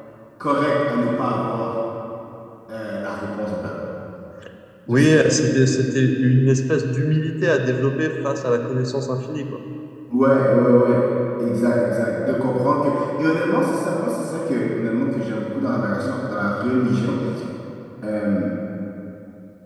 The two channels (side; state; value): both; identical; correlation 1.00